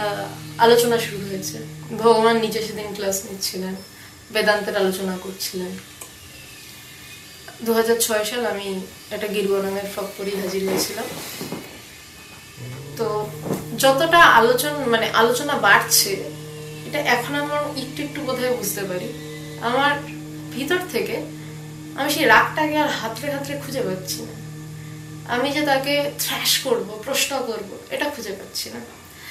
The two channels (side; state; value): both; identical; correlation 1.00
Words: আলোচনা শুরু হয়েছে। ভগবান নিজে সেদিন ক্লাস নিচ্ছিলেন, বেদান্তের আলোচনা করছিলেন। 2006 সাল আমি একটা গেরুয়া রঙের ফ্রক পরে হাজির হয়েছিলাম। তো যতটা আলোচনা বাড়ছে, এটা এখন আমার একটু একটু বোধহয় বুঝতে পারি। আমার ভিতর থেকে আমি সেই রাগটাকে আর হাতড়ে হাতড়ে খুঁজে পাচ্ছি না। আমি যে তাকে থ্র্যাশ করব, প্রশ্ন করব, এটা খুঁজে পাচ্ছি না।